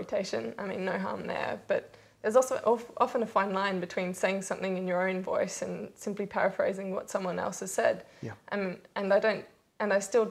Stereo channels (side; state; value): both; identical; correlation 1.00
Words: No harm there, but there's also often a fine line between saying something in your own voice and simply paraphrasing what someone else has said. Yeah. And I still